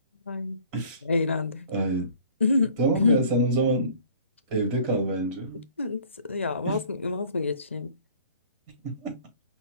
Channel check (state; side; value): inverted; both; correlation -0.52